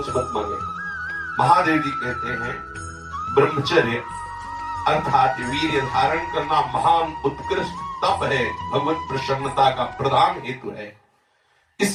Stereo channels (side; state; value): both; identical; correlation 1.00